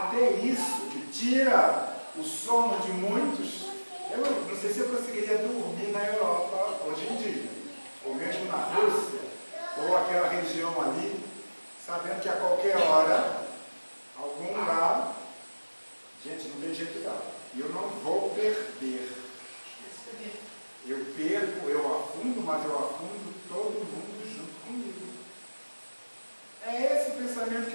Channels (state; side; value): inverted; both; correlation -1.00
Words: isso que tira o sono de muitos. Eu não sei se eu conseguiria dormir na Europa hoje em dia, ou mesmo na Rússia, ou aquela região ali, sabendo que a qualquer hora, algum lugar, gente, não tem jeito não. E eu não vou perder. Eu perco, eu afundo, mas eu afundo todo mundo junto comigo. É esse o pensamento